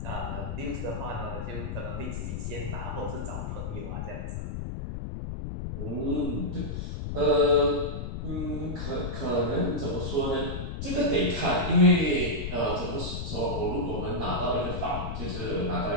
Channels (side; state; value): left; noise; rumble, 4 dB below the sound